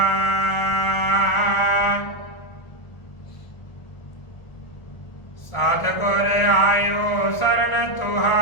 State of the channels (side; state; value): right; late; 1.4 ms